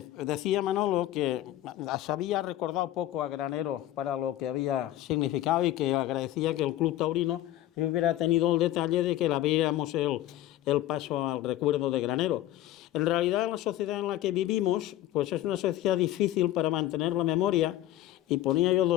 Manolo que se había recordado poco a Granero para lo que había significado y que agradecía que el Club Taurino hubiera tenido el detalle de que le abriéramos el paso al recuerdo de Granero. En realidad, la sociedad en la que vivimos pues es una sociedad difícil para mantener la memoria, y ponía yo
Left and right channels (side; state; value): right; quieter; 14.1 dB